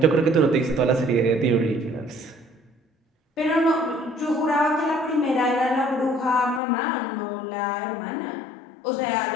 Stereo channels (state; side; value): drops out; right; at 6.6 s